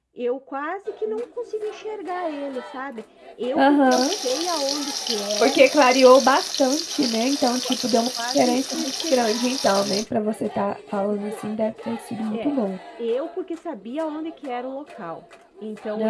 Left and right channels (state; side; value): identical; both; correlation 1.00